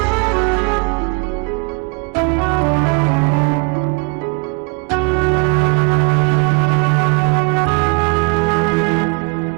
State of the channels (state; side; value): quieter; left; 32.1 dB